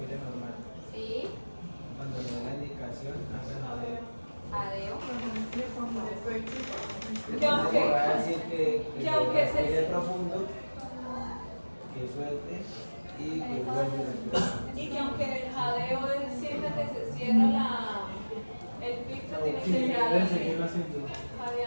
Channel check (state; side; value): inverted; both; correlation -1.00